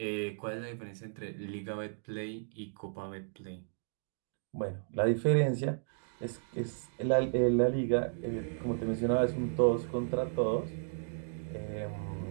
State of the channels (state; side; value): silent; left; digital silence